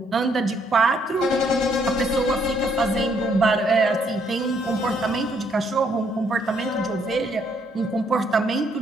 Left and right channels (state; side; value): normal; both; correlation 0.70